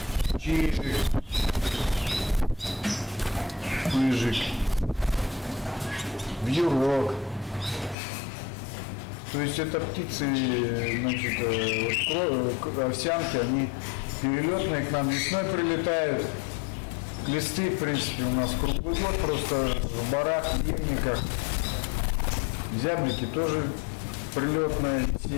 чижик, пыжик, вьюрок. То есть это птицы, значит, овсянки, они перелетные к нам весной прилетают. Клесты, в принципе, у нас круглый год, просто в барах, в ельниках. Зяблики тоже прилетная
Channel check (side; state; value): right; drops out; at 8.0 s